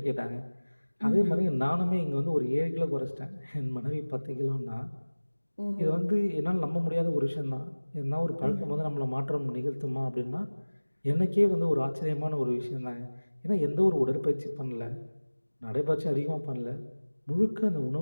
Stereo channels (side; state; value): both; inverted; correlation -1.00